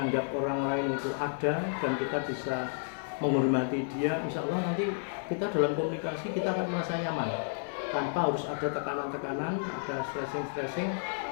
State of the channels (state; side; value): silent; right; digital silence